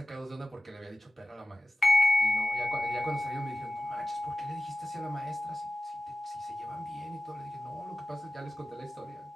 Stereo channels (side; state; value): both; normal; correlation 0.94